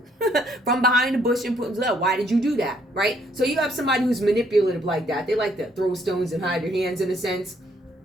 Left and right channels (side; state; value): both; normal; correlation 0.67